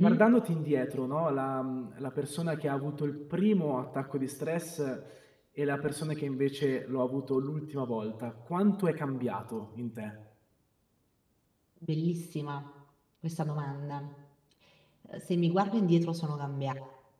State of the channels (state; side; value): identical; both; correlation 1.00